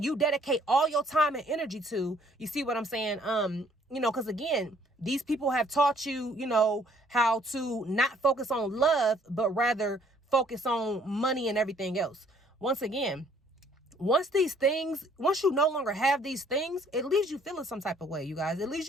you dedicate all your time and energy to, you see what I'm saying? Because again, these people have taught you, how to not focus on love, but rather focus on money and everything else. Once again, once you no longer have these things, it leaves you feeling some type of way, you guys. It leaves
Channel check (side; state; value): both; normal; correlation 0.62